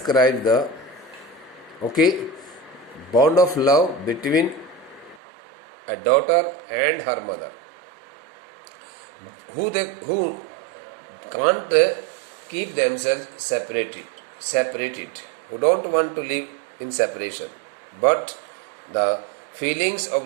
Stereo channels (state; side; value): drops out; left; at 5.2 s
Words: okay, bond of love between a daughter and her mother, who can't keep themselves separated, who don't want to live in separation. But the feelings